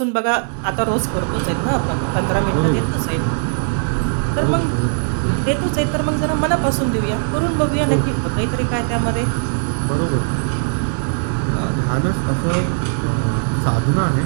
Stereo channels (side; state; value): left; silent; 57 dB below the other